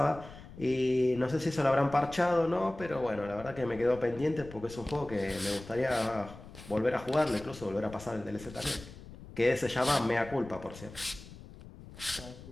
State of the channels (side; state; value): left; noise; rumble, 16 dB below the sound